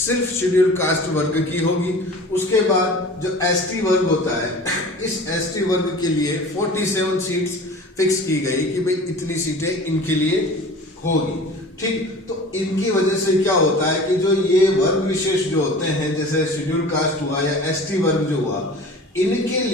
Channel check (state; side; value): normal; both; correlation 0.40